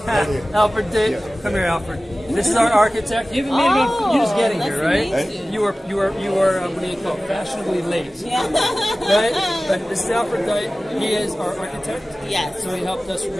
Alfred, come here, Alfred. This is our architect. You haven't made you're just getting here, right? You are what do you call it, fashionably late. Yeah. Right? But this is Alfred Dyke. He is our architect. Yes. So he helped us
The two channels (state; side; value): normal; both; correlation 0.97